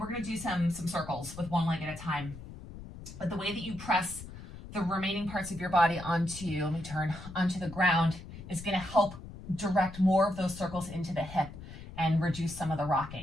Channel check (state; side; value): noise; left; rumble, 14 dB below the sound